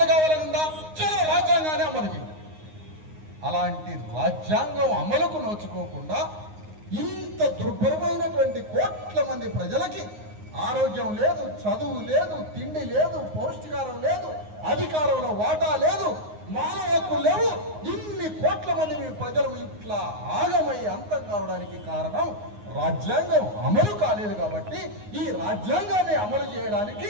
కావాలనుందా, చలో రాజ్యాంగాన్ని అమలు చేయి. అలాంటి రాజ్యాంగం అమలుకు నోచుకోకుండా ఇంత దుర్భరమైనటువంటి కోట్ల మంది ప్రజలకి ఆరోగ్యం లేదు, చదువు లేదు, తిండి లేదు, పౌష్టికారం లేదు, అధికారంలో వాటా లేదు, మానవ హక్కులు లేవు. ఇన్ని కోట్ల మంది ప్రజలు ఇట్లా ఆగమై అంతం కావడానికి కారణం రాజ్యాంగం అమలు కాలేదు. కాబట్టి ఈ రాజ్యాంగాన్ని అమలు చేయడానికి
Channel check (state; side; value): late; left; 9.6 ms